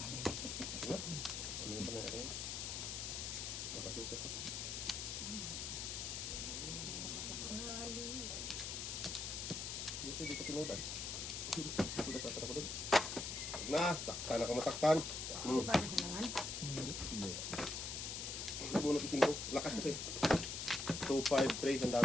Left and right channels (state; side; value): noise; left; hiss, 4 dB below the sound